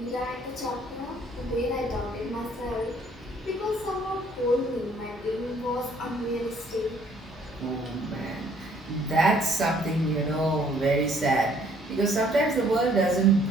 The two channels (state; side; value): normal; both; correlation 0.62